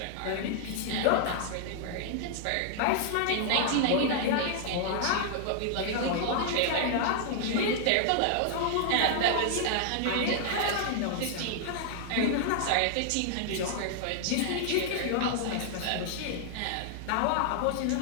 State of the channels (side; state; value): both; different; correlation -0.01